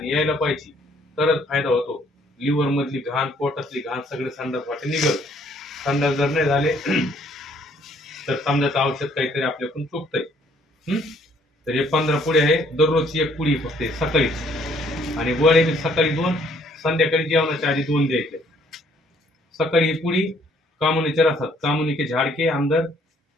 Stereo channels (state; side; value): normal; both; correlation 0.64